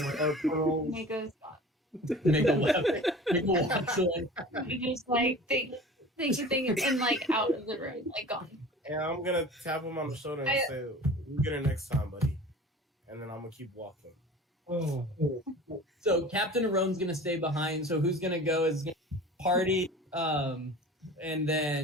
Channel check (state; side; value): normal; both; correlation 0.40